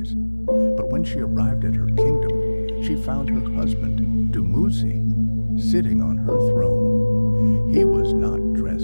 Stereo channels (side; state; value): both; inverted; correlation -1.00